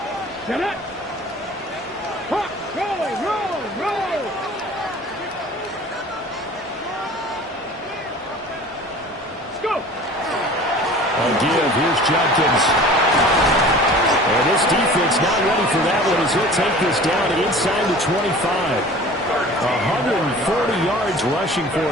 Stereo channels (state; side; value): normal; both; correlation 0.43